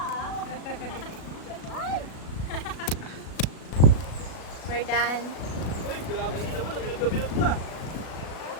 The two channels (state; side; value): late; right; 37 ms